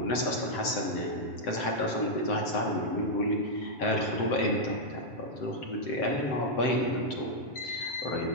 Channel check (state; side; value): late; right; 7.8 ms